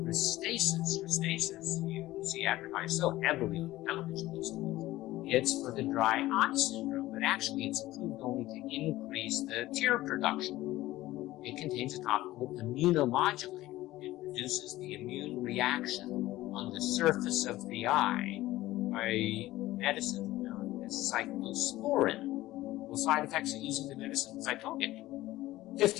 Restasis, you see advertised so heavily on the television these days. It's for the dry eye syndrome, but actually it's approved only to increase the tear production. It contains a topical immunomodulator. It reduces the immune reaction on the surface of the eye by medicine known as cyclosporin. Well, side effects of using the medicine, as I told you,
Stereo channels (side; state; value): right; quieter; 16.6 dB